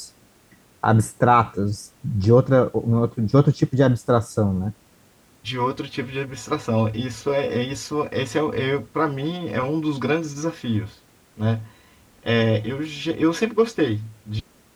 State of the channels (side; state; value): both; identical; correlation 1.00